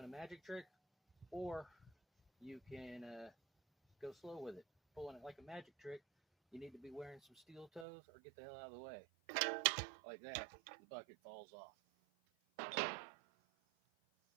a magic trick, or you can go slow with it. Pulling it like a magic trick, you need to be wearing some steel toes or get the hell out of the way. Like that, the bucket falls off.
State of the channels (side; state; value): left; drops out; at 7.9 s